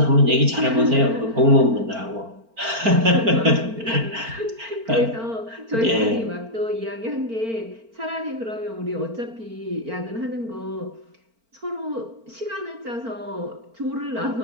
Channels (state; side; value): late; left; 4.4 ms